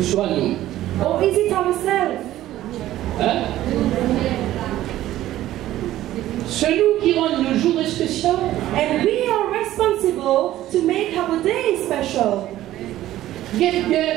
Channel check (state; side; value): quieter; left; 14.2 dB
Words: soit nous? Or is it ourselves? Hein? C'est nous qui rendons le jour spécial. And we are responsible to make our day special.